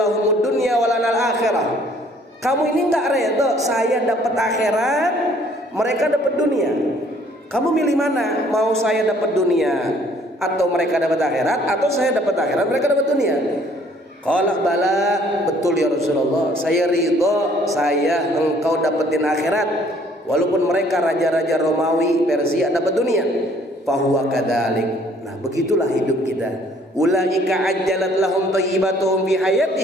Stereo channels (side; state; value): both; normal; correlation 0.60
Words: dunya wa lanal akhirah?" Kamu ini enggak reda saya dapat akhirat, mereka dapat dunia. Kamu milih mana? Mau saya dapat dunia atau mereka dapat akhirat, atau saya dapat akhirat mereka dapat dunia? Qala bala, betul ya Rasulullah, saya ridho, saya engkau dapetin akhirat walaupun mereka raja-raja Romawi Persia dapat dunia. Fahuwa kadzalik. Nah, begitulah hidup kita. Ulaika ajjalat lahum thayyibatuhum fi